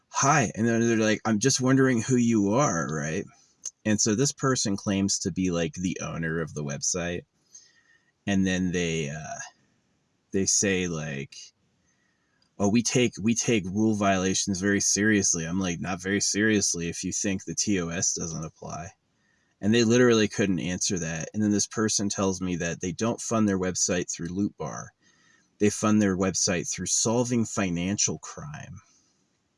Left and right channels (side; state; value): both; identical; correlation 1.00